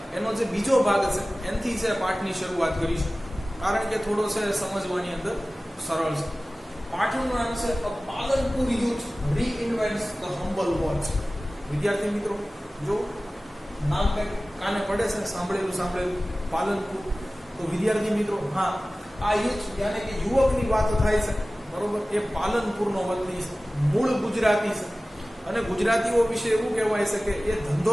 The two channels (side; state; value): both; normal; correlation 0.97